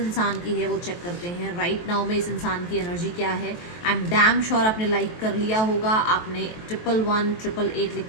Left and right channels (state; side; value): late; right; 23 ms